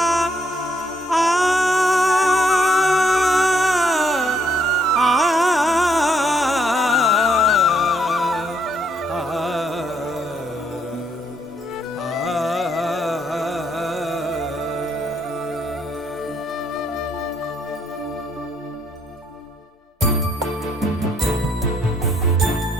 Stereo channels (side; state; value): both; normal; correlation 0.71